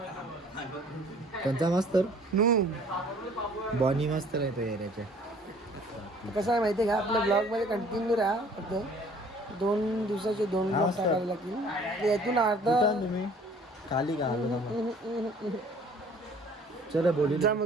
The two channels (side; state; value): both; normal; correlation 0.54